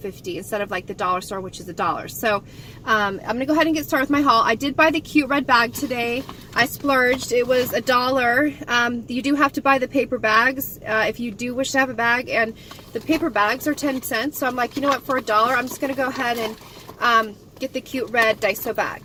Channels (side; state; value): both; identical; correlation 1.00